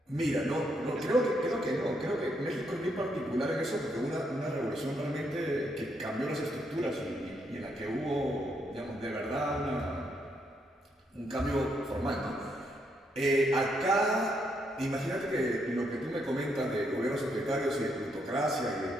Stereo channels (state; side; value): normal; both; correlation 0.76